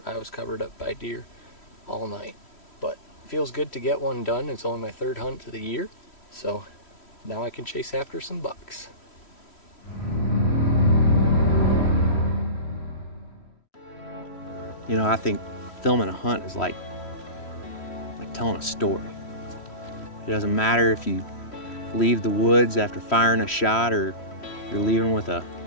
I was covered up by deer all night. But it feels good to get one done. It's only my third hunt of the year, so now I can chase after some bucks. You know, I think filming a hunt is like telling a story. It doesn't matter if you leave the woods after firing a shot or you're leaving with a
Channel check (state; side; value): late; right; 3.1 ms